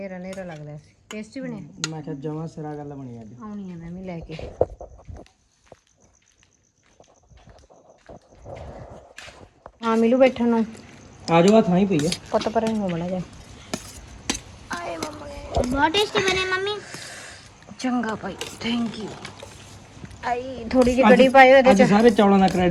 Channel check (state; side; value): identical; both; correlation 1.00